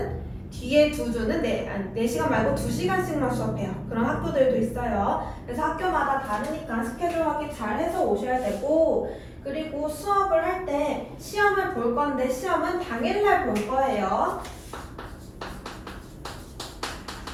뒤에 2주는 4시간 말고 2시간씩만 수업해요. 그런 학교들도 있어요. 그래서 학교마다 다르니까 스케줄 확인 잘 해서 오셔야 되고, 그리고 수업을 할 때 시험을 볼 건데 시험은 당일날 볼 거예요.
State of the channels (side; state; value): both; identical; correlation 1.00